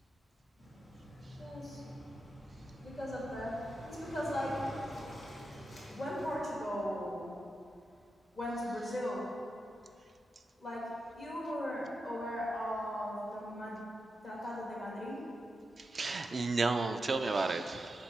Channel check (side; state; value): both; normal; correlation 0.88